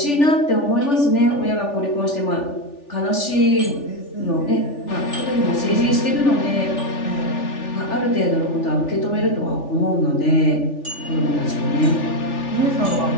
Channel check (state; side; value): late; right; 3.4 ms